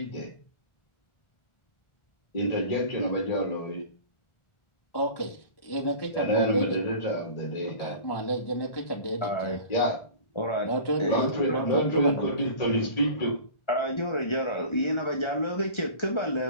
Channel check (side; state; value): right; late; 1.4 ms